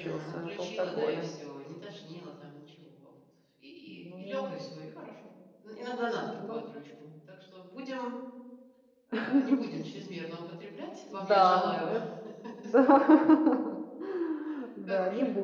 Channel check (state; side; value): identical; both; correlation 1.00